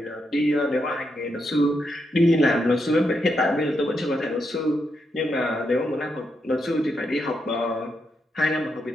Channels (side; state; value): both; normal; correlation 0.82